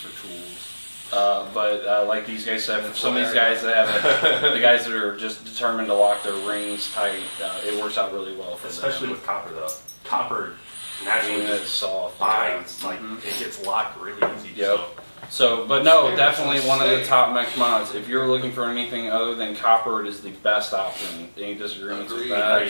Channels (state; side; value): inverted; both; correlation -1.00